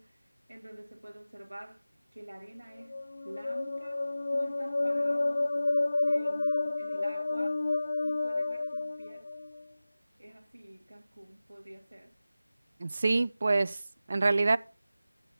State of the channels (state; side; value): inverted; both; correlation -0.95